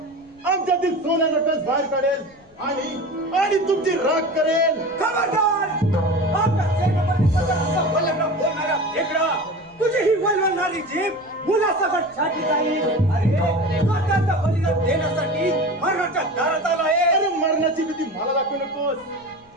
आमच्यातील सोन्याचा कस बाहेर काढेल आणि तुमची राख करेल. खबरदार! आपल्या सेनापतीबद्दल वल्लभ बोलणारा फेकडा, तुझी ही वल्लवणारी जीभ मुलासकट छाटली जाईल. अरे स्वतःचं बलिदान देण्यासाठी मरणाच्या दारात आला आहे. अरे मरणाची भीती मला दाखवू नकोस.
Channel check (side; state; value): left; noise; rumble, 29 dB below the sound